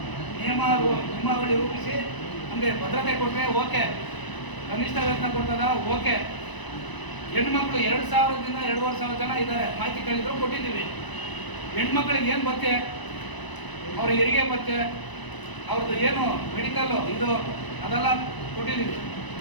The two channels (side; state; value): right; late; 1.0 ms